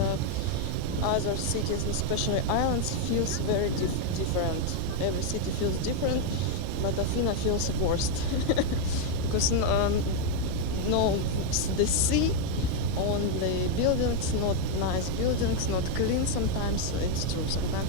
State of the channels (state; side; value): different; both; correlation 0.01